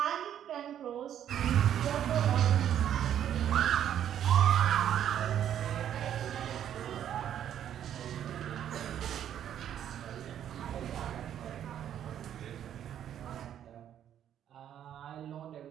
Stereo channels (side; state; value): left; quieter; 10.2 dB